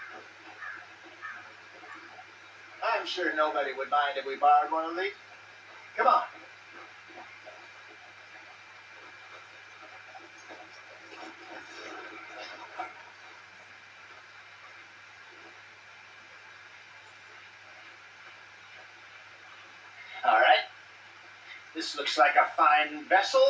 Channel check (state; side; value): identical; both; correlation 1.00